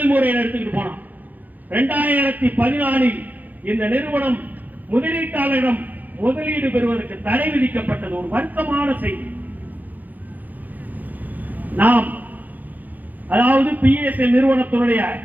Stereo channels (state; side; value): late; left; 0.083 ms